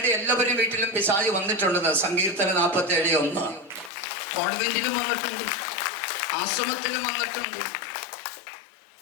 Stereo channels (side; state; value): right; drops out; at 3.9 s